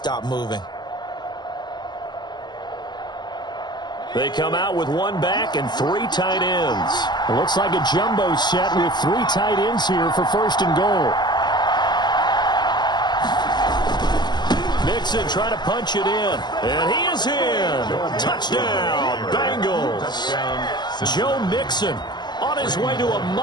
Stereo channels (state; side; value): late; right; 0.21 ms